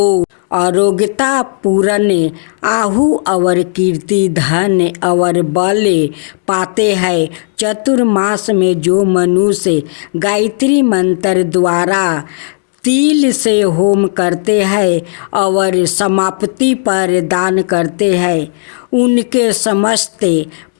आरोग्यता पूर्ण आहु और कीर्ति धन और बल पाते हैं। चतुर्मास में जो मनुष्य गायत्री मंत्र द्वारा तिल से होम करते हैं और समाप्ति पर दान करते हैं उनके समस्त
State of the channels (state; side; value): silent; right; digital silence